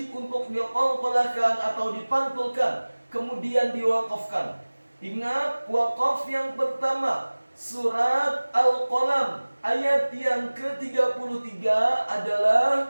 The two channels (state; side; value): inverted; both; correlation -1.00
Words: untuk diqalqalahkan atau dipantulkan, kemudian diwaqafkan. Ingat, waqaf yang pertama surat Al-Qalam ayat yang ke-33